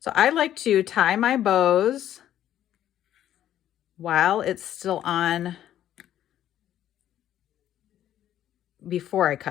I like to tie my bows while it's still on before I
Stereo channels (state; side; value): quieter; right; 11.6 dB